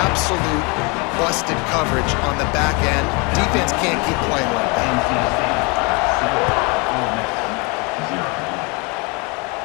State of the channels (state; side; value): quieter; right; 30.1 dB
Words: absolute busted coverage on the back end. Defense can't keep playing like that.